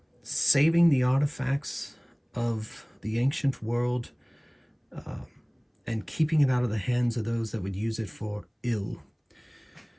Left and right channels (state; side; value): identical; both; correlation 1.00